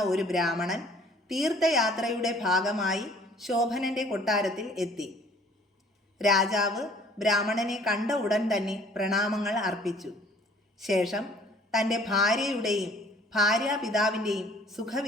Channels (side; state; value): both; normal; correlation 0.55